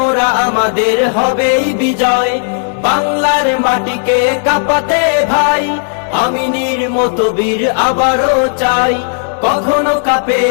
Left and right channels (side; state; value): right; silent; digital silence